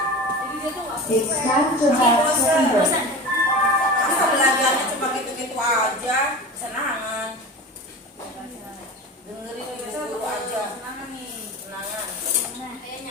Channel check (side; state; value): both; normal; correlation 0.32